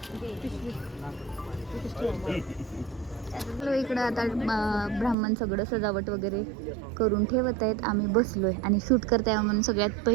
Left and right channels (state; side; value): drops out; left; at 5.2 s